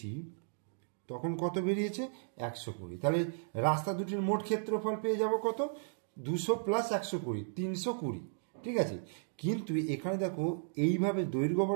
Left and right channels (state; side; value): silent; left; digital silence